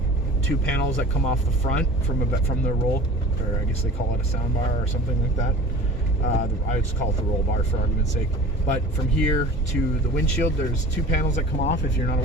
2 panels that come off the front from the roll, or I guess they call it a sound bar or something like that. I just call it the roll bar for argument's sake. But from here to the windshield, there's 2 panels that come off, if you're not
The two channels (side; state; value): both; normal; correlation 0.41